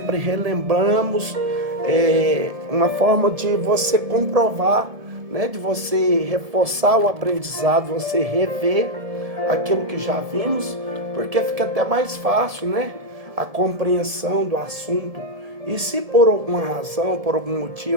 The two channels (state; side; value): late; left; 1.7 ms